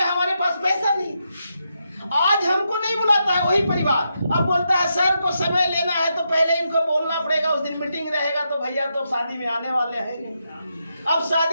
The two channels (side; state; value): both; inverted; correlation -0.83